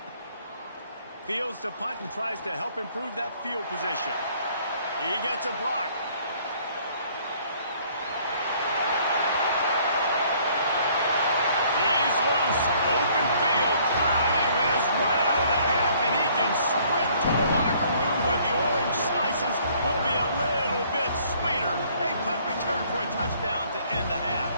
Fields to punt and tries to help improve that field position. He gets a block. He's loose. Open field. Time has run out of the half, and he can sprint to the locker room where the orange slices will be a little bit sweeter. A punt return for a touchdown to end the half.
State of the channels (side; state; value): both; inverted; correlation -0.60